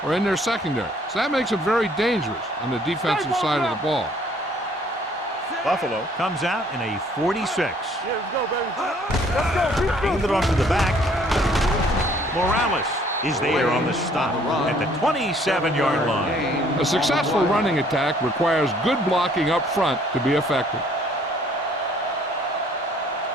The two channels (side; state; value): both; normal; correlation 0.60